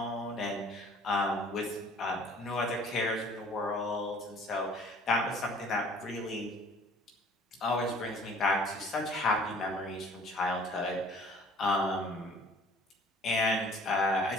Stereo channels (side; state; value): both; normal; correlation 0.52